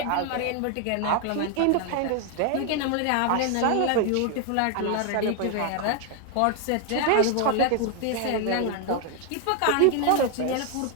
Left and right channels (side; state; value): both; different; correlation 0.00